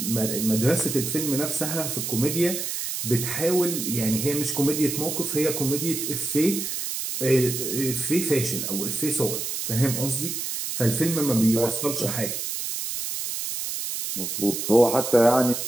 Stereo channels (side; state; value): right; noise; hiss, 4 dB below the sound